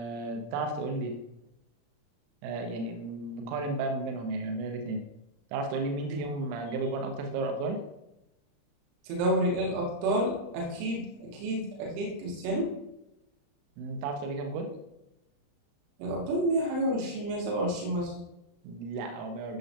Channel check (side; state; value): left; late; 35 ms